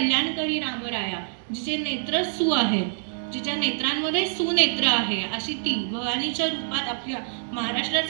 रामराया, जिचे नेत्र सु आहेत, जिच्या नेत्रांमध्ये सुनेत्र आहे, अशी ती भवानीच्या रूपात आपल्या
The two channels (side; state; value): left; silent; digital silence